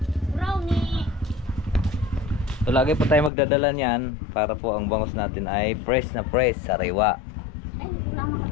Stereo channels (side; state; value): right; drops out; at 3.3 s